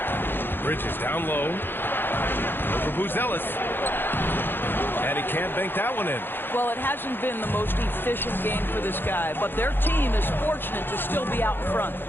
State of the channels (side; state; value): right; late; 0.10 ms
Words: Bridges down low. Over Ellis. And he can't bank that one in. Well, it hasn't been the most efficient game for this guy, but their team is fortunate to still be out in front.